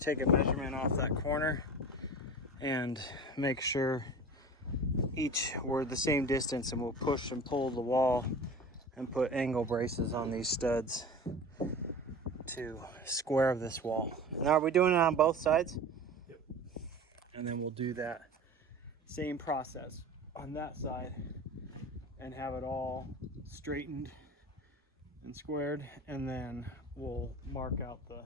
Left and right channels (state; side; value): normal; both; correlation 0.35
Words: a measurement off that corner and make sure each were the same distance, and we'll push and pull the wall and put angle braces on these studs to square this wall. Now, are we doing it on both sides? Yep. And then we'll do that same process on that side and have it all straightened and squared, and then we'll mark out the